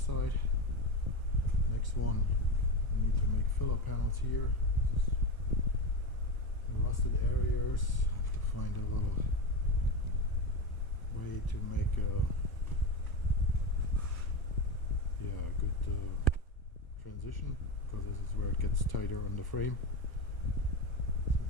Next one, I need to make filler panels here. This is the rusted areas. I have to find a little way to make a good transition, because this is where it gets tighter on the frame,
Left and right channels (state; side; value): late; right; 1.0 ms